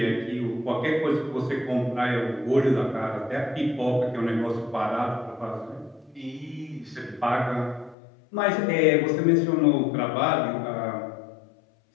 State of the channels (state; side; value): drops out; right; at 8.0 s